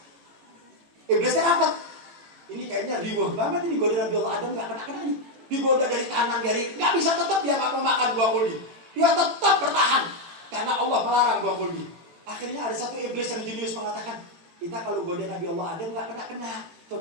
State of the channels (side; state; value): left; late; 18 ms